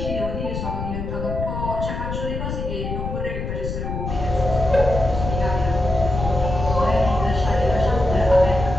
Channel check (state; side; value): noise; left; rumble, 5 dB below the sound